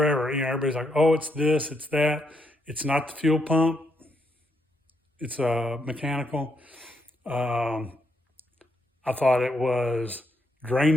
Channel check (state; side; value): normal; both; correlation 0.78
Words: You know, everybody's like, oh, it's this, it's that. It's not the fuel pump. It's mechanical. I thought it was